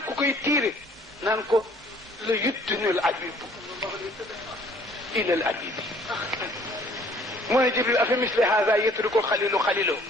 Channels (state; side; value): normal; both; correlation 0.57